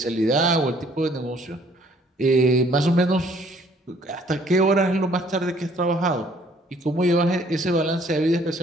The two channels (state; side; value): normal; both; correlation 0.61